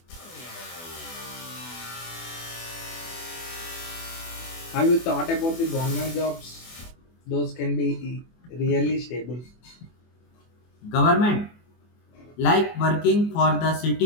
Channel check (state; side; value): late; right; 24 ms